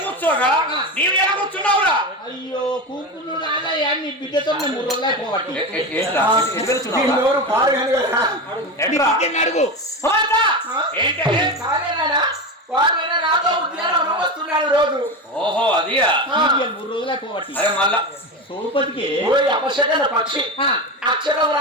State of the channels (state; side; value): normal; both; correlation 0.20